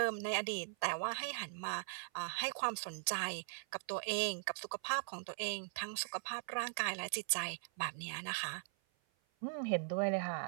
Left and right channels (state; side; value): silent; left; 51 dB below the other